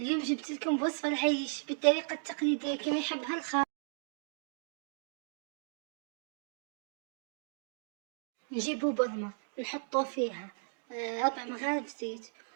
جبت لكم وصفة العيش بالطريقة التقليدية كما يحبها الخال. نجيبوا بضمة نحطوا فيها 4 مغارف زيت،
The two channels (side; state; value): left; silent; digital silence